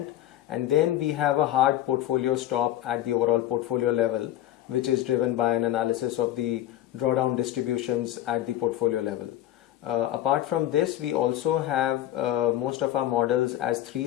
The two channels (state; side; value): quieter; right; 13.1 dB